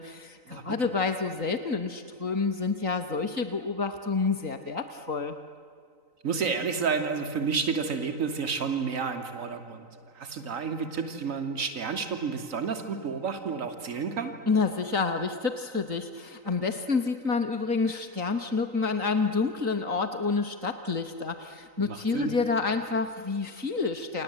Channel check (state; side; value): late; left; 3.9 ms